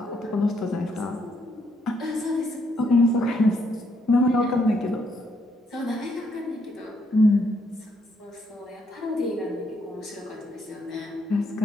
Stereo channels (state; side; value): normal; both; correlation 0.73